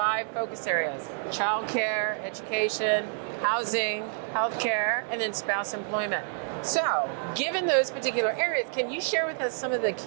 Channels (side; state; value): left; silent; digital silence